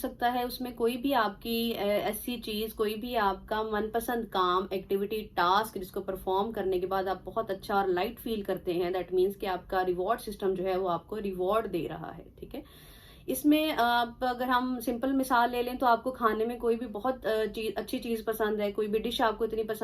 है, उसमें कोई भी आपकी ऐसी चीज, कोई भी आपका मनपसंद काम, एक्टिविटी, टास्क जिसको परफॉर्म करने के बाद आप बहुत अच्छा और लाइट फील करते हैं, दैट मीन्स कि आपका रिवॉर्ड सिस्टम जो है वो आपको रिवॉर्ड दे रहा है। ठीक है। इसमें आप अगर हम सिंपल मिसाल ले लें तो आपको खाने में कोई भी बहुत अच्छी चीज पसंद है, कोई भी डिश आपको इतनी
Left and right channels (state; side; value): identical; both; correlation 1.00